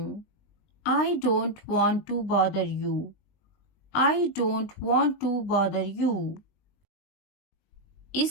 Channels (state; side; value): late; right; 19 ms